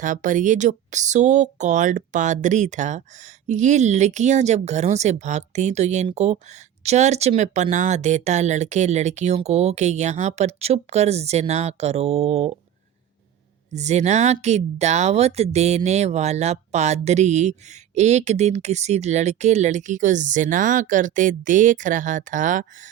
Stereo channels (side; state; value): left; quieter; 10.3 dB